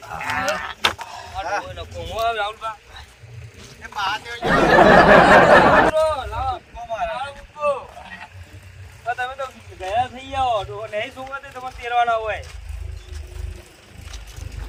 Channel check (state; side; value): identical; both; correlation 1.00